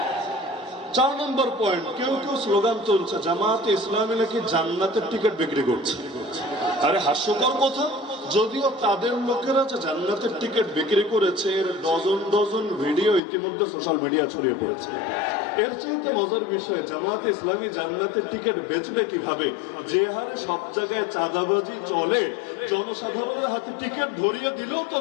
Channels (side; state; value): right; drops out; at 13.2 s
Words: 4 নম্বর পয়েন্ট, কেউ কেউ স্লোগান তুলছে জামাতে ইসলামী নাকি জান্নাতের টিকিট বিক্রি করছে। আরে হাস্যকর কথা, যদিও তাদের লোকেরা যে জান্নাতের টিকিট বিক্রি করেছে এর ডজন ভিডিও ইতিমধ্যে সোশ্যাল মিডিয়া ছড়িয়ে পড়েছে। এর চাইতে মজার বিষয়, জামাতে ইসলামী জান্নাতের টিকিট বেচবে কিভাবে? যে হারে সব জায়গায় চাঁদাবাজি চলে, জনসাধারণের হাতে টিকিট ধরিয়ে দিলেও তো